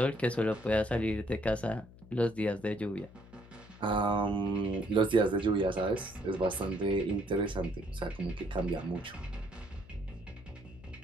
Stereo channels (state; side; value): noise; left; hum, 21 dB below the sound